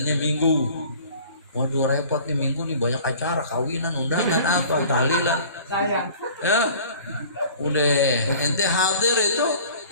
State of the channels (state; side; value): inverted; both; correlation -0.47